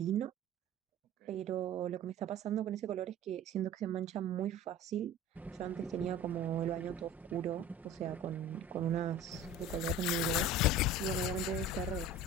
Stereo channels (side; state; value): both; normal; correlation 0.39